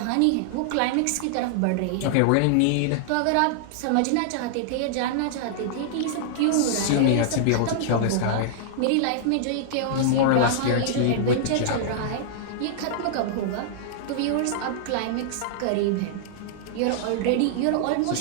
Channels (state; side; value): different; both; correlation -0.01